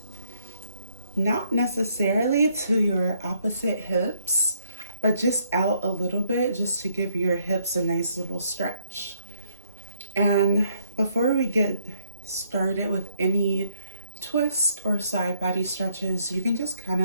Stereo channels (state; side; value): inverted; both; correlation -0.71